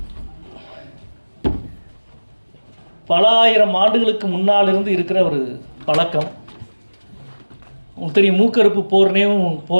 பல ஆயிரம் ஆண்டுகளுக்கு முன்னால் இருந்து இருக்கிற ஒரு பழக்கம். உங்களுக்கு தெரியும், மூக்கறுப்பு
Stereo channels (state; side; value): inverted; both; correlation -1.00